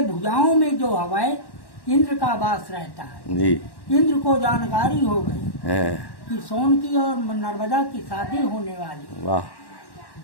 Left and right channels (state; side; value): late; right; 1.1 ms